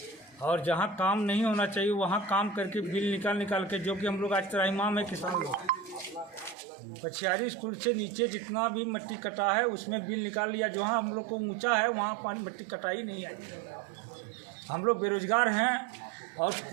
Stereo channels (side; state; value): left; drops out; at 6.6 s